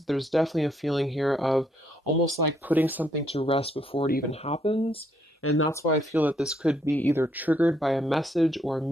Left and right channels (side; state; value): both; normal; correlation 0.72